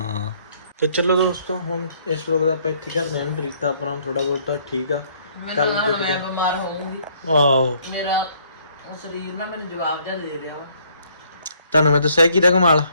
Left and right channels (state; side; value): inverted; both; correlation -0.64